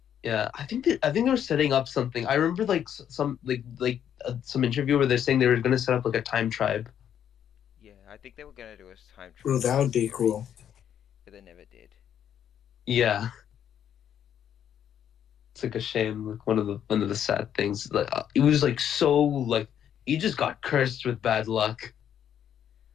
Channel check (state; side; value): quieter; right; 9.5 dB